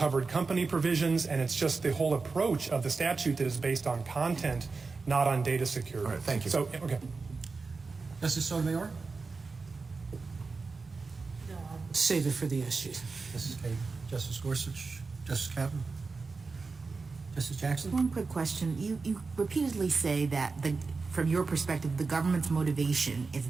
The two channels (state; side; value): quieter; left; 4.3 dB